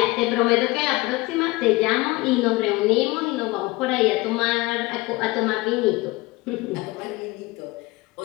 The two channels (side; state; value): right; quieter; 21.8 dB